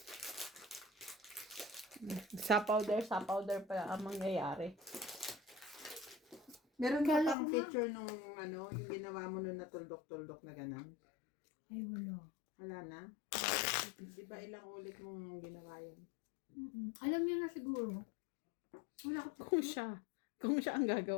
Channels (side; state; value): right; drops out; at 7.4 s